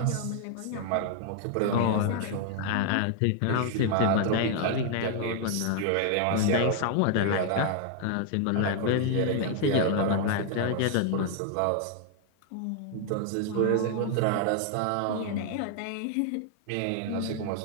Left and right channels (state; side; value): different; both; correlation 0.00